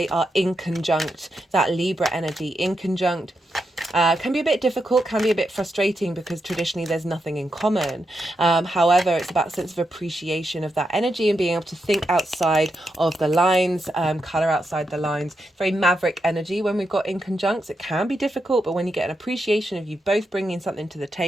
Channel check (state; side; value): normal; both; correlation 0.85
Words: are in conjunct, that Libra energy in conjunct. Can be a bit difficult, can be a bit frustrating because traditionally there's nothing in common. However, it's about a sense of appreciation of that energy and being able to think outside of the lines, colour outside the lines. Very maverick energy when we've got in conjuncts. It can be difficult, but when you get an appreciation of you both bringing something to the